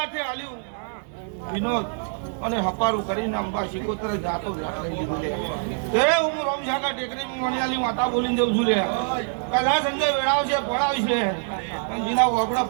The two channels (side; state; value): left; silent; digital silence